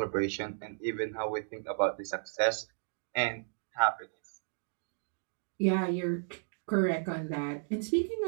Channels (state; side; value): silent; left; digital silence